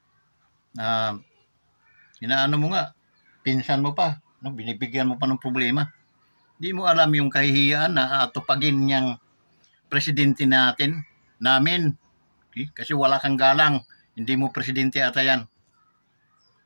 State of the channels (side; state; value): both; inverted; correlation -1.00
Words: Inaano mo nga, pinsan mo pa, no? Binibigyan mo pa ng problema. Hindi mo alam yung kahihiyaan na atupagin niyang presidente namin. Okay? Kasi wala kang galang, hindi mo presidente ata yan.